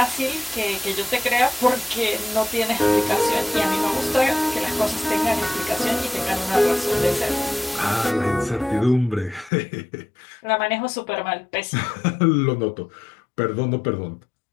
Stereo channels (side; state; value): right; drops out; at 9.5 s